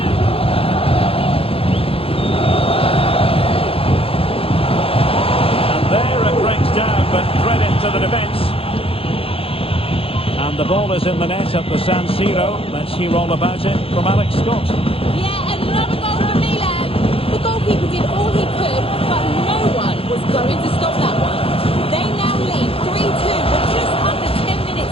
And there it breaks down, but credit to the defence. And the ball is in the net at the San Siro. Let's hear all about it from Alex Scott. Yeah, another goal for Milan. The goalkeeper did all he could, but no one was going to stop that one. They now lead 3-2 with just under 10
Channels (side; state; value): right; late; 0.27 ms